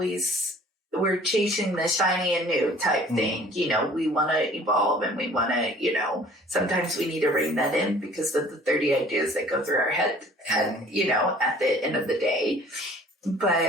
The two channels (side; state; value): both; normal; correlation 0.52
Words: chasing the shiny and new type thing. We want to evolve, and we want to, sometimes we need to rein that in because of the 30 ideas that go through our head, and, at the end of the day.